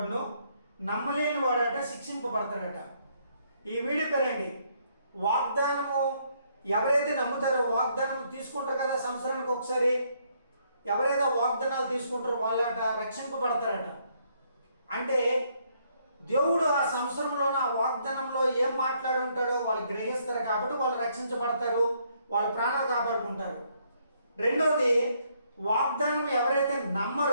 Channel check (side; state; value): both; inverted; correlation -0.70